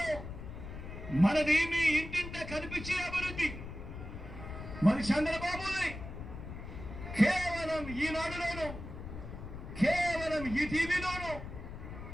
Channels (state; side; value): noise; left; rumble, 10 dB below the sound